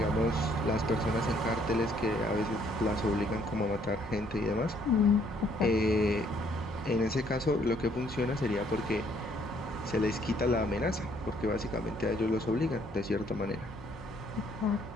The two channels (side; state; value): both; normal; correlation 0.65